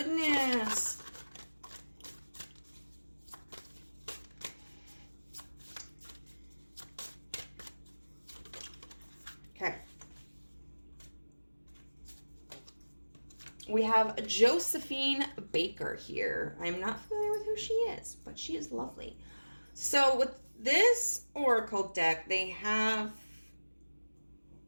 Okay. We have Josephine Baker here. I'm not familiar with who she is, but she is lovely. So with this oracle deck, they have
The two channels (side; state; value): both; inverted; correlation -1.00